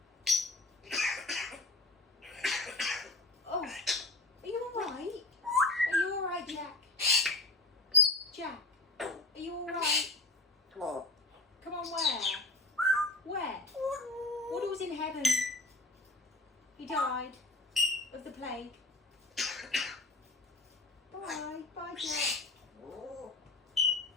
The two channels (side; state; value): right; quieter; 3.0 dB